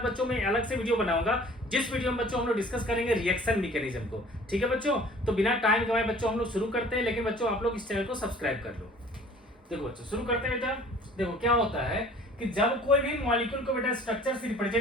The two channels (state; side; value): normal; both; correlation 0.50